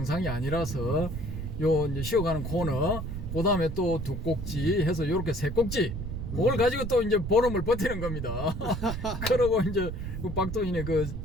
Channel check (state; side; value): noise; right; rumble, 6 dB below the sound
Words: 아니라서 요 이제 쉬어가는 코너, 그 다음에 또 2꼭지 해서 요렇게 3꼭지 그걸 가지고 또 이제 보름을 버티는 겁니다. 그러고 이제 그 박도인의